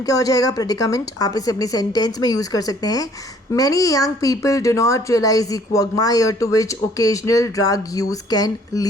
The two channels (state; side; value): normal; both; correlation 0.59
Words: क्या हो जाएगा? प्रेडिकामेंट। आप इसे अपनी सेंटेंस में यूज कर सकते हैं। Many young people do not realise the quagmire to which occasional drug use can